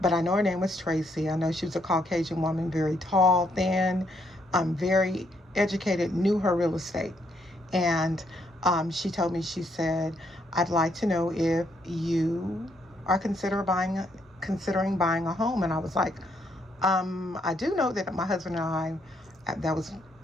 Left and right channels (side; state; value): both; normal; correlation 0.74